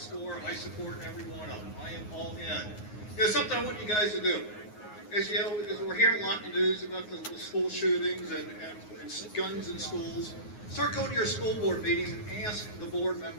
I support every one of them. I am all in. You know, something I want you guys to do. As you know, as we're hearing a lot in the news about the school shootings and guns in schools, start going to your school board meetings and ask the board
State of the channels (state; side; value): late; right; 9.5 ms